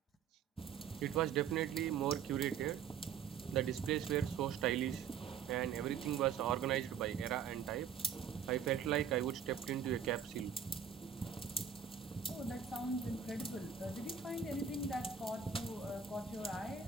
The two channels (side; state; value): left; quieter; 7.4 dB